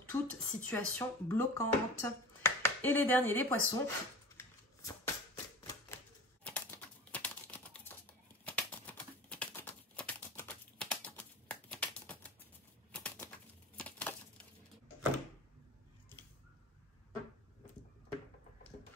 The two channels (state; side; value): normal; both; correlation 0.36